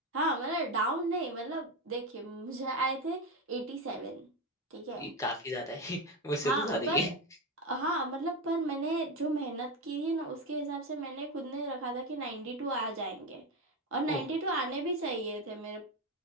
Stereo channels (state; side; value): normal; both; correlation 0.14